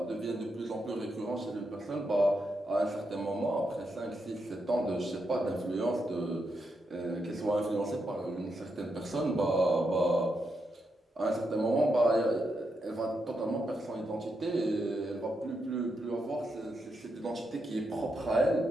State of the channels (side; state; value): both; normal; correlation 0.83